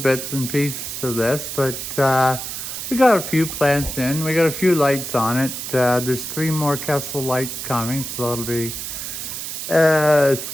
and pieces of this, but we got a few plants in. We got a few lights on it. There's 3 more Kessel lights coming, so that'll be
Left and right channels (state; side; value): noise; right; hiss, 6 dB below the sound